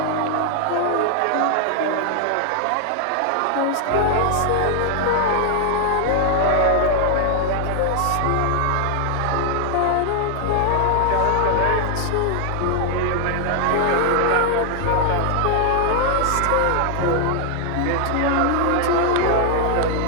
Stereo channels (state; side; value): different; both; correlation 0.00